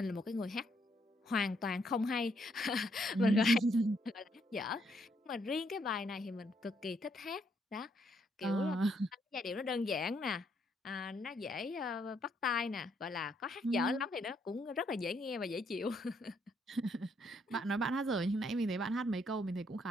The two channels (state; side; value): normal; both; correlation 0.73